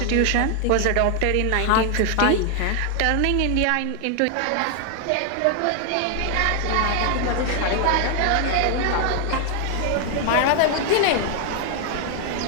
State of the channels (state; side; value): different; both; correlation 0.00